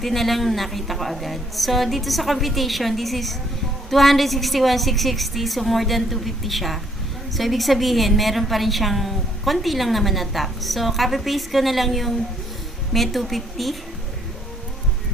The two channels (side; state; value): both; normal; correlation 0.66